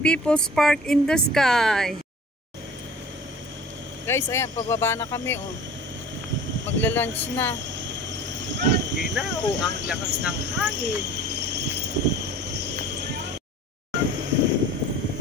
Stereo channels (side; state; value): both; normal; correlation 0.44